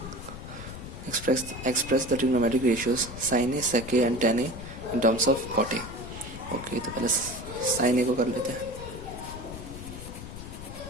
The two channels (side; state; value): left; noise; rumble, 11 dB below the sound